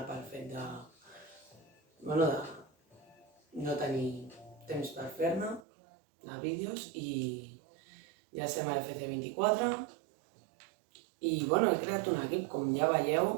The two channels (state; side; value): drops out; left; at 5.7 s